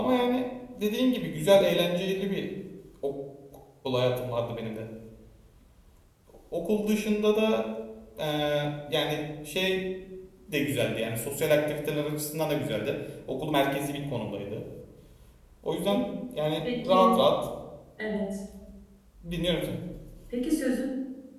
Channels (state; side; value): identical; both; correlation 1.00